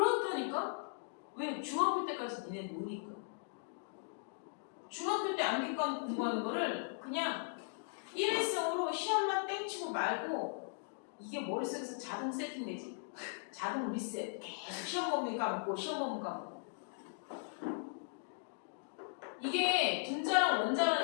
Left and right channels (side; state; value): right; silent; digital silence